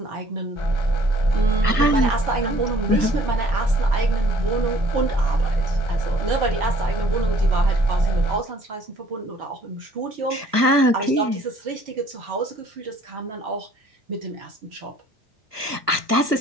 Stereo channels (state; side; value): late; left; 1.3 ms